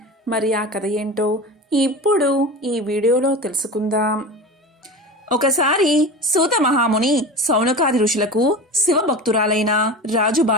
మరి ఆ కథ ఏంటో ఇప్పుడు ఈ వీడియోలో తెలుసుకుందాం. ఒకసారి సూత మహాముని సౌనకాది ఋషులకు శివభక్తురాలైన రాజు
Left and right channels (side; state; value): both; normal; correlation 0.30